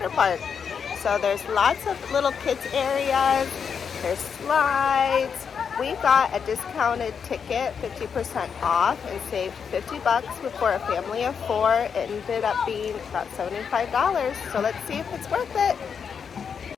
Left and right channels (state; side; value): quieter; right; 6.7 dB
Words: Park. So there's lots of little kids areas, there's slides. We got a discounted ticket, 50% off, and saved $50 for a family of 4. It ended up being about $75. So let's see if it's worth it.